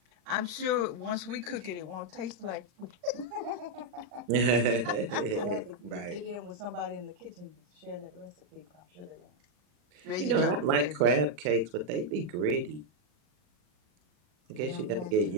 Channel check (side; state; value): left; late; 40 ms